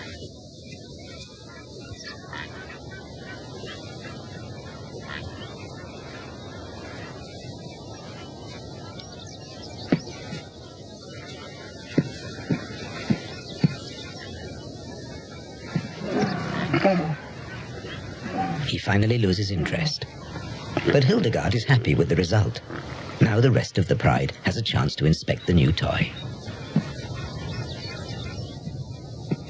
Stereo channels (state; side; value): identical; both; correlation 1.00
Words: He finally loses interest. But Hildegard is happy with the result. Now the rest of the pride has a chance to inspect the new toy.